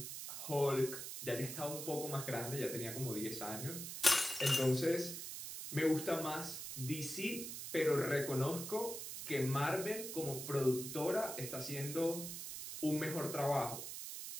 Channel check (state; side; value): noise; right; hiss, 7 dB below the sound